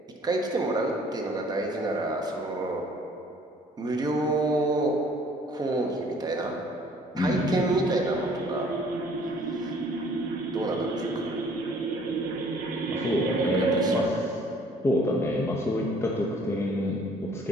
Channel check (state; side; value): normal; both; correlation 0.57